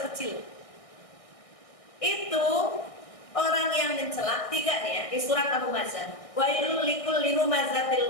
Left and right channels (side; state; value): right; late; 1.6 ms